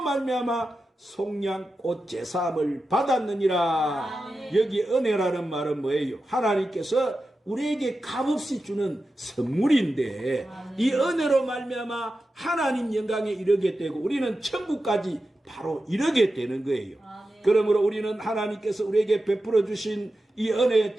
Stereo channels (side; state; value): both; normal; correlation 0.92